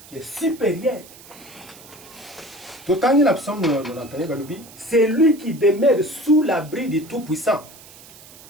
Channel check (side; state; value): right; noise; hiss, 20 dB below the sound